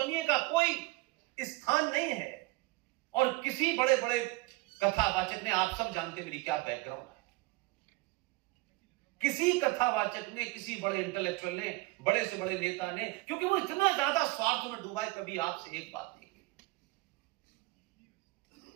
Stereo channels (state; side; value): quieter; left; 23.1 dB